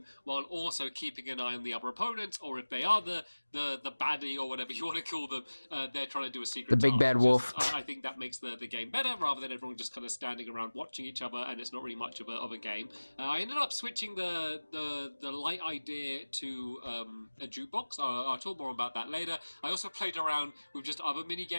while also keeping an eye on the other opponents, or if they are the baddie or whatever you want to call them, they're trying to do a secret task. The big bad wolf. I think that makes the game better, rather than everyone just kind of standing around watching each other, and it's not really much of a game. I ended up switching the light idea to a jukebox. I'll talk more about that later. I also played around with just other mini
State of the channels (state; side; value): inverted; both; correlation -1.00